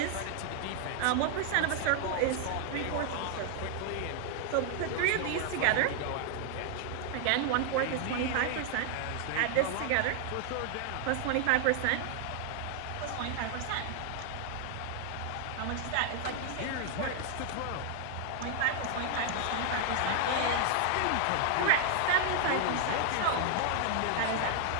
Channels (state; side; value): different; both; correlation 0.00